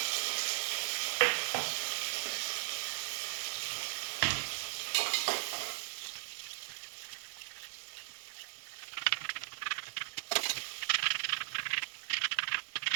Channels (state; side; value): silent; left; digital silence